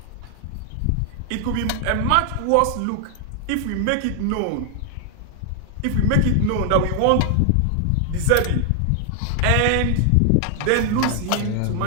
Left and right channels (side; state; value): both; different; correlation 0.00